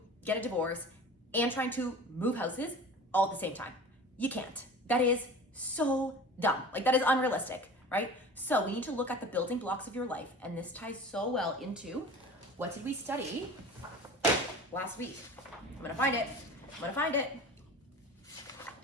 get a divorce and trying to move houses all at the same time. You can't. That is so dumb. Like, that is unrealistic, right? So we need to look at the building blocks of your life, and this ties so well into what did we study last week? I'm gonna find it.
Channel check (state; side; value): normal; both; correlation 0.38